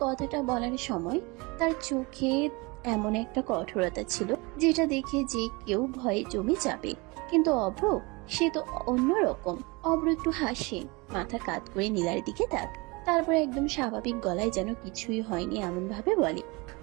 কথাটা বলার সময় তার চোখে এমন একটা কঠোরতা ছিল, যেটা দেখে যে কেউ ভয়ে জমে যাবে। কিন্তু অভ্র, সে তো অন্যরকম। অভ্র একটু হাসে, মাথা কাত করে নীলার দিকে তাক, তারপর একদম স্বাভাবিক গলায় যেন কিছুই হয়নি এমন ভাবে বলে,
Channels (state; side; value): quieter; left; 26.2 dB